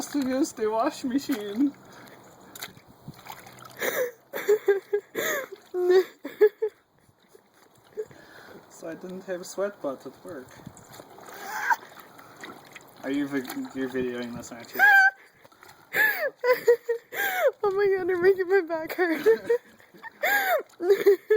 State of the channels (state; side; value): identical; both; correlation 1.00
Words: to use the wash machine. So I didn't have sweat butt at work. Are you you're videoing this, aren't you? Oh my god, you're making my back hurt.